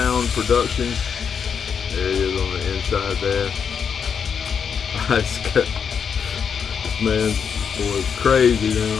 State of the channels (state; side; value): quieter; right; 6.8 dB